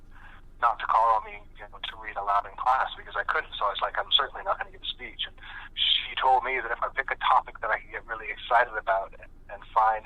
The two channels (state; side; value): identical; both; correlation 1.00